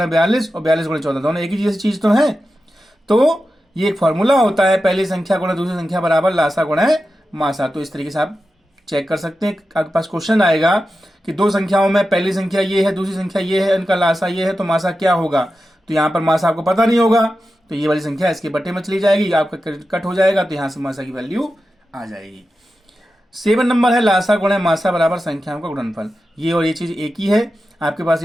42 और 42 गुणे 14, दोनों एक ही जैसी चीज तो है। तो ये एक फॉर्मूला होता है, पहली संख्या गुणे दूसरी संख्या बराबर लासा गुणे मासा। तो इस तरीके से आप चेक कर सकते हैं। आपके पास क्वेश्चन आएगा कि दो संख्याओं में पहली संख्या ये है, दूसरी संख्या ये है, इनका लासा ये है, तो मासा क्या होगा। तो यहाँ पर मासा आपको पता नहीं होगा, तो ये वाली संख्या इसके बट्टे में चली जाएगी, आपका कट हो जाएगा, तो यहाँ से मासा की वैल्यू आ जाएगी। 7 नंबर है लासा गुणे मासा बराबर संख्याओं का गुणनफल। ये और ये चीज एक ही है। आपके पास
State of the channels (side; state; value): both; normal; correlation 0.92